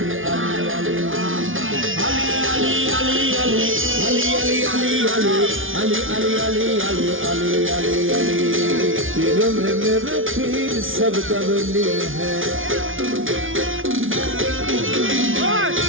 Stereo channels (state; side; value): late; left; 0.58 ms